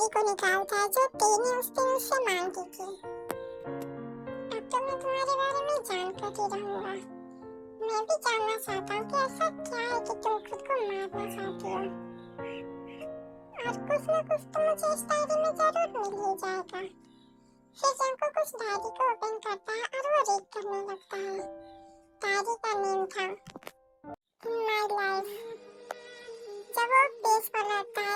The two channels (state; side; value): identical; both; correlation 1.00